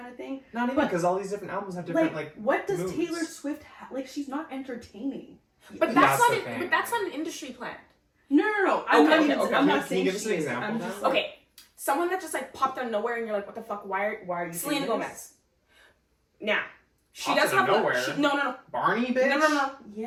of thing. Not even, because all these different albums have different what does moods. Taylor Swift like? She's not entertaining. But That's that's the not thing. but that's not an industry plant. No. Okay, I'm not Can saying you give us an she is. example I'm then? just like, Okay, someone that just like popped out of nowhere, and you're like, what the fuck? Why are you? Selena saying this? Gomez. Now, she Popped does out of have nowhere? no. Barney, bitch? No.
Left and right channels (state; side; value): identical; both; correlation 1.00